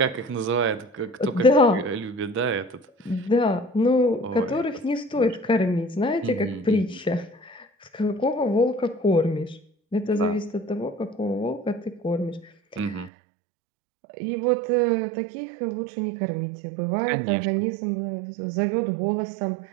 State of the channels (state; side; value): drops out; left; at 13.1 s